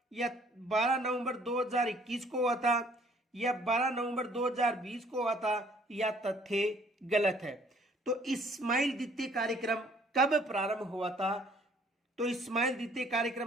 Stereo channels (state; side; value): normal; both; correlation 0.59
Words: या 12 नवंबर 2021 को हुआ था, या 12 नवंबर 2020 को हुआ था, या तथ्य गलत है? तो इस्माइल द्वितीय कार्यक्रम कब प्रारंभ हुआ था? तो इस्माइल द्वितीय